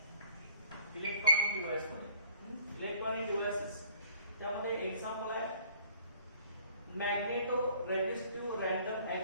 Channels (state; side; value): inverted; both; correlation -0.56